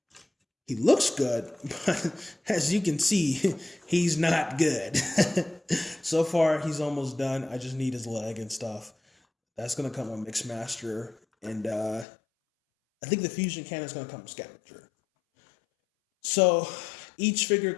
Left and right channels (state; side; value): drops out; right; at 12.1 s